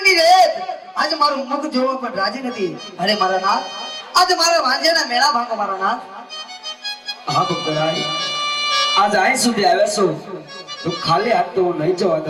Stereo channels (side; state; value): both; identical; correlation 1.00